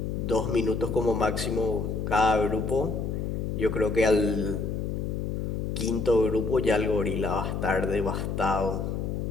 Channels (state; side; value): noise; left; hum, 2 dB below the sound